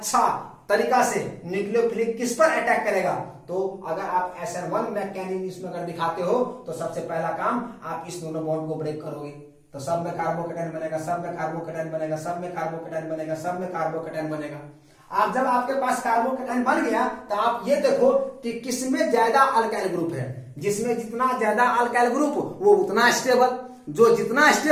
तरीका से न्यूक्लियोफिलिक किस पर अटैक करेगा, तो अगर आप SN1 मैकेनिज्म अगर दिखाते हो तो सबसे पहला काम आप इस दोनों बॉन्ड को ब्रेक करोगे, तो सब में कार्बोकेटाइन बनेगा, सब में कार्बोकेटाइन बनेगा, सब में कार्बोकेटाइन बनेगा, सब में कार्बोकेटाइन बनेगा। आप जब आपके पास कार्बोकेटाइन बन गया तो आप ये देखो कि किसमें ज्यादा अल्काइल ग्रुप है। जिसमें जितना ज्यादा अल्काइल ग्रुप वो उतना स्टेबल। जो जितना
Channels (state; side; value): identical; both; correlation 1.00